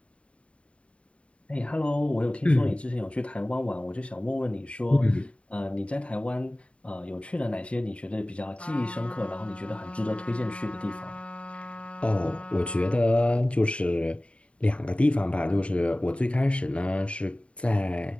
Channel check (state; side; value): late; right; 0.062 ms